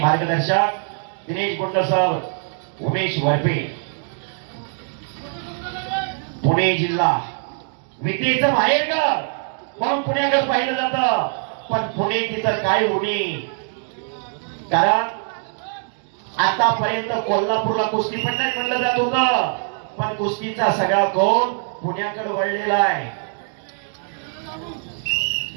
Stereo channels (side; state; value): left; silent; 61 dB below the other